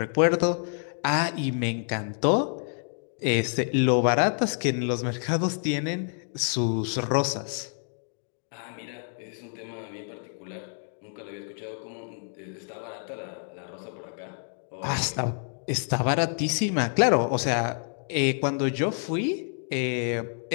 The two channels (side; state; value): right; silent; 59 dB below the other